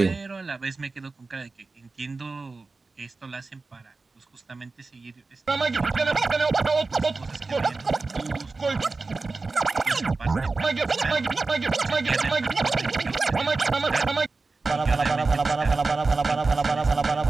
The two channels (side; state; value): left; quieter; 3.8 dB